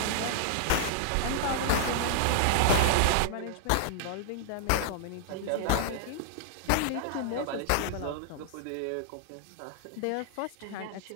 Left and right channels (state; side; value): different; both; correlation -0.01